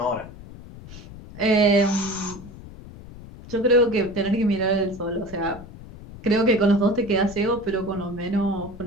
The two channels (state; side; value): noise; left; rumble, 16 dB below the sound